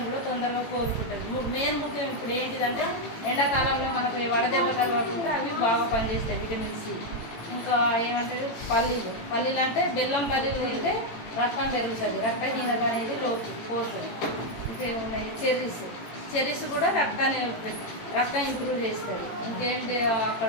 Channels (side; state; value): right; late; 18 ms